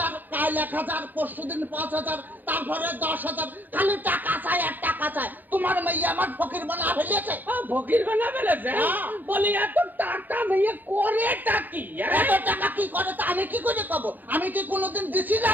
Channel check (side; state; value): left; late; 0.089 ms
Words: কাল 1,000, পরশুদিন 5,000, তারপরে 10,000, খালি টাকা চাই আর টাকা চাই। তোমার মেয়ে আমার ফকির বানা ফেলেছে। ফকির বানা ফেলেছে? বলি এত টাকা মেয়ে করে টাকি? এত টাকা কি করে তা আমি কি করে পাবো? আমি কি কোনোদিন দিছি